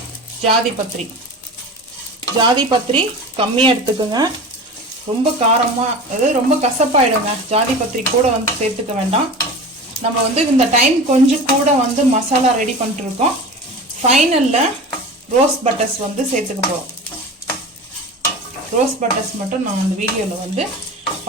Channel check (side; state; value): both; normal; correlation 0.33